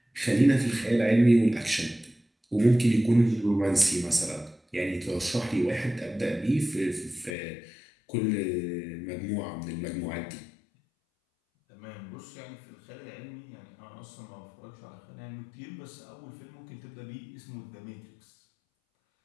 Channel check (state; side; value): drops out; right; at 7.3 s